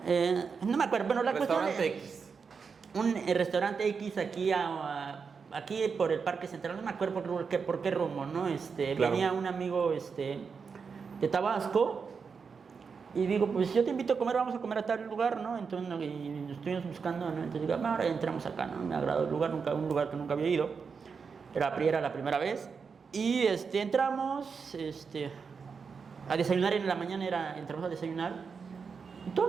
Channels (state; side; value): quieter; left; 5.6 dB